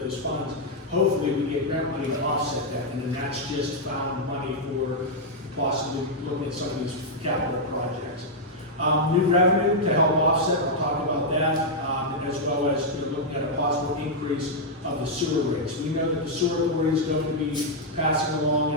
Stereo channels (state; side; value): normal; both; correlation -0.03